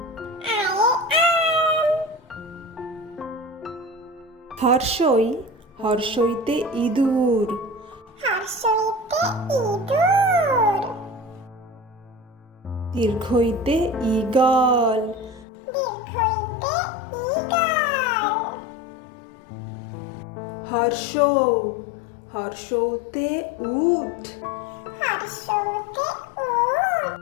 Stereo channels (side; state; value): right; drops out; at 15.5 s